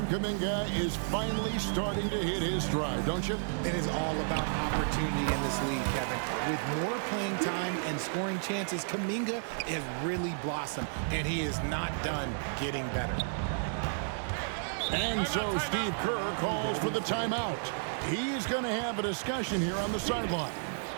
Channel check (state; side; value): silent; left; digital silence